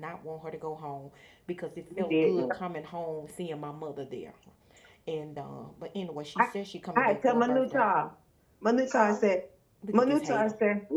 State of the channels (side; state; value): both; identical; correlation 1.00